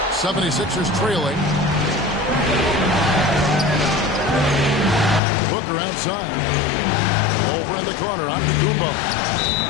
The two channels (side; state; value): right; drops out; at 5.2 s